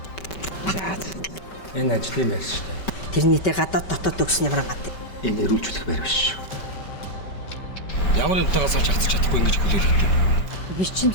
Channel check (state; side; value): late; right; 5.2 ms